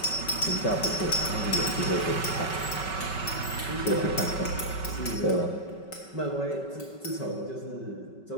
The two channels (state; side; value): late; right; 5.3 ms